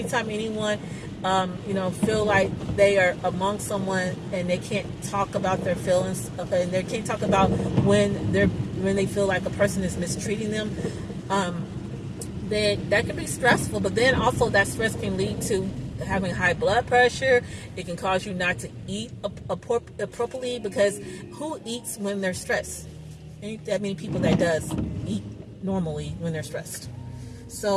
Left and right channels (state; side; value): identical; both; correlation 1.00